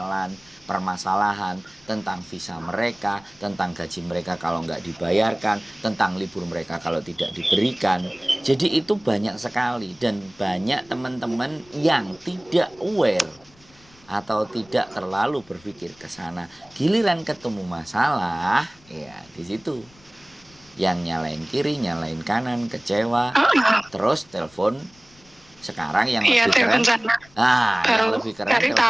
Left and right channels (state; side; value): noise; left; rumble, 28 dB below the sound